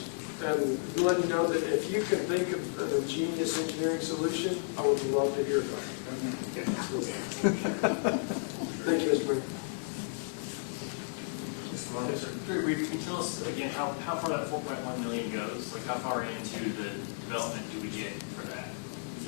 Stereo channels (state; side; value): silent; right; 56 dB below the other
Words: And letting you know that if you can think of a genius engineering solution, I would love to hear about it. Thank you, Mr. Mayor. Can you tell us again how far that 4.1 million goes? Like how far into the development do we get for that? Is